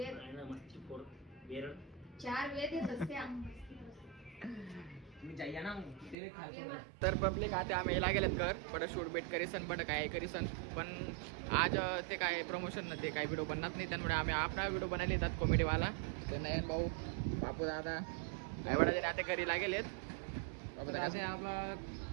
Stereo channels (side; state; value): left; drops out; at 6.2 s